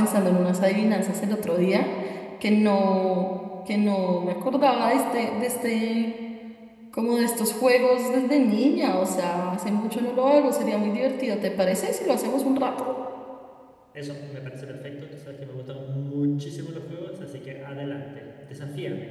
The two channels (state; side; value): identical; both; correlation 1.00